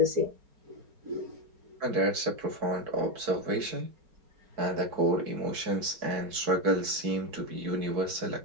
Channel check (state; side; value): late; left; 4.7 ms